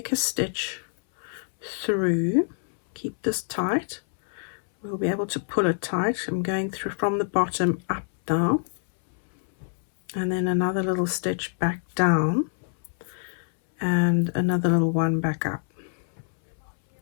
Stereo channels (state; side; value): silent; right; 61 dB below the other